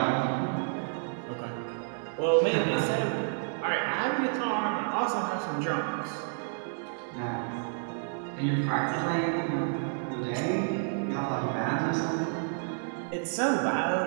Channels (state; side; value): silent; left; 55 dB below the other